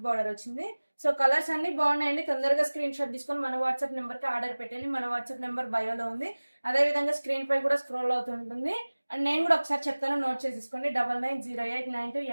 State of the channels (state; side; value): inverted; both; correlation -1.00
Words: బార్డర్ వచ్చింది. సో కలర్స్ అన్ని బాగున్నాయండి. తొందరగా స్క్రీన్ షాట్ తీసుకొని మన వాట్సాప్ నెంబర్ కి ఆర్డర్ పెట్టండి. మన వాట్సాప్ నెంబర్ బయోలో ఉంది, అదే విధంగా స్క్రీన్ పై కూడా స్క్రోల్ అవుతుంటుంది. అండ్ నేను కూడా ఒకసారి చెప్తాను, నోట్ చేసేసుకోండి.